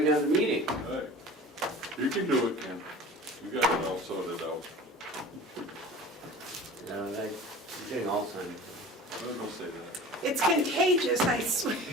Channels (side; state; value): both; normal; correlation 0.40